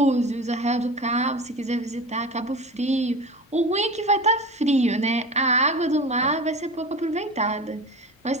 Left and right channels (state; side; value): normal; both; correlation 0.31